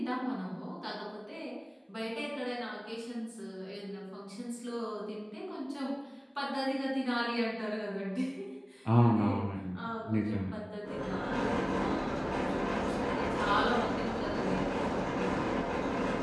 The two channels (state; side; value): identical; both; correlation 1.00